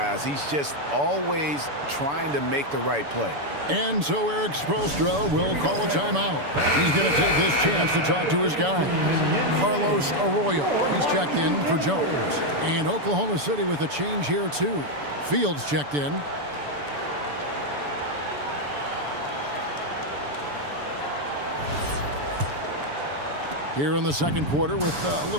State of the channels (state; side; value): late; left; 6.9 ms